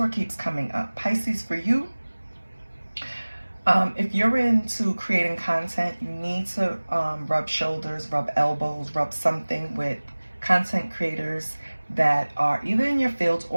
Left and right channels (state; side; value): inverted; both; correlation -1.00